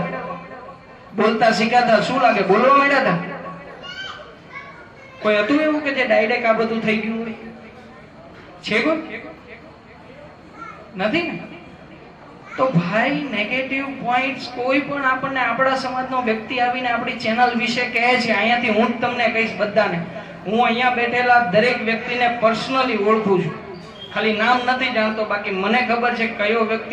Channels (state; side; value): identical; both; correlation 1.00